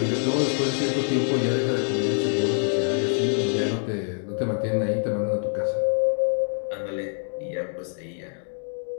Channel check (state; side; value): silent; right; 56 dB below the other